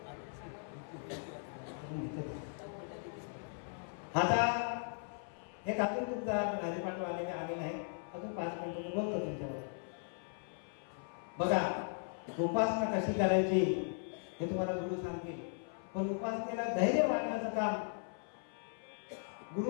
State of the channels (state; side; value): silent; right; 52 dB below the other